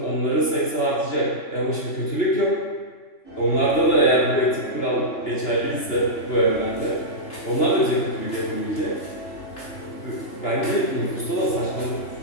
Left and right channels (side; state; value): right; late; 2.9 ms